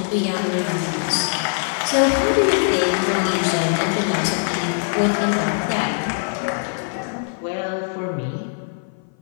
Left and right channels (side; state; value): right; silent; 56 dB below the other